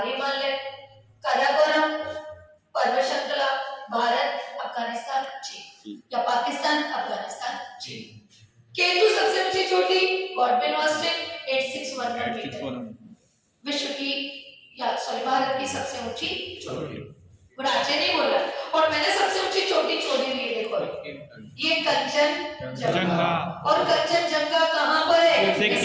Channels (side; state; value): both; identical; correlation 1.00